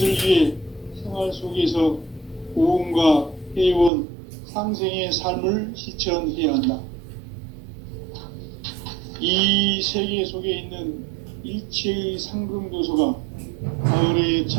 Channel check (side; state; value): left; drops out; at 3.9 s